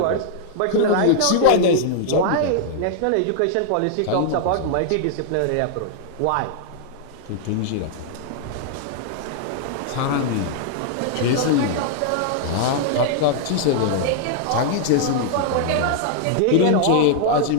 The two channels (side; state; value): both; different; correlation -0.01